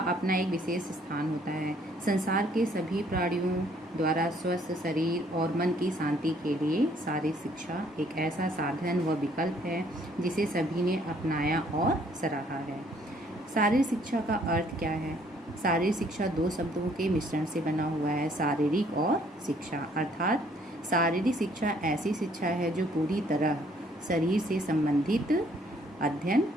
एक विशेष स्थान होता है। संसार के सभी प्राणियों द्वारा स्वस्थ शरीर और मन की शांति के लिए शारीरिक शिक्षा एक ऐसा साधन व विकल्प है जिसे सभी ने अपनाया और सराहा है। शारीरिक शिक्षा का अर्थ क्या है? शारीरिक शिक्षा दो शब्दों के मिश्रण से बना हुआ है, शारीरिक और शिक्षा। अर्थात शारीरिक शिक्षा ऐसी शिक्षा है जो पूरी तरह शरीर से संबंधित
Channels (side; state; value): both; normal; correlation 0.64